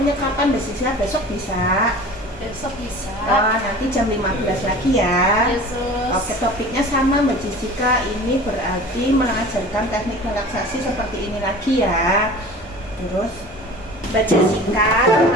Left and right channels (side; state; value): both; normal; correlation 0.40